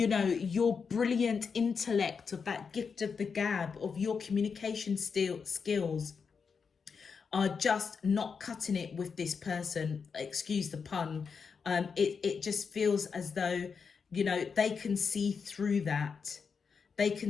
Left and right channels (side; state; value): right; quieter; 5.8 dB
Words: know, your brilliant intellect, of that gift of the gab, of your communication skills are just not cutting it with this person, excuse the pun. It just feels as though, you know, they can see through that. They